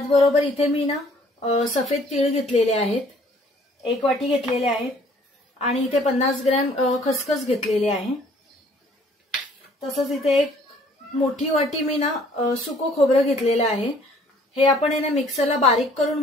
इथे मी सफेद तीळ घेतलेले आहेत, 1 वाटी घेतलेले आहेत आणि इथे 50 ग्रॅम खसखस घेतलेले आहे। तसंच इथे एक मोठी वाटी मी सुको खोबरं घेतलेलं आहे। हे आपण मिक्सरला बारीक करून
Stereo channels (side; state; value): both; normal; correlation 0.58